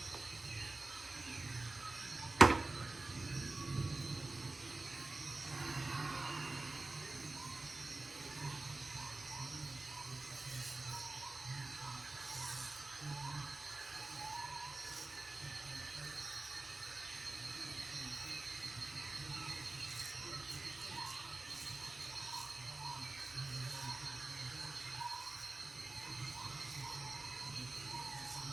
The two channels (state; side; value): quieter; left; 3.2 dB